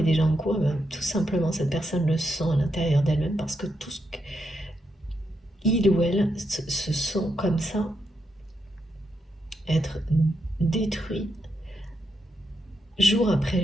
déjà en cours? Eh bien, tout simplement, cette personne le sent à l'intérieur d'elle-même parce que tout ce qu'il ou elle se sent comme ça, être détruit jour après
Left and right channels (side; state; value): both; normal; correlation 0.82